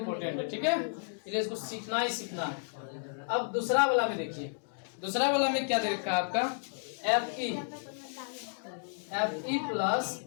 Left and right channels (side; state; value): right; silent; digital silence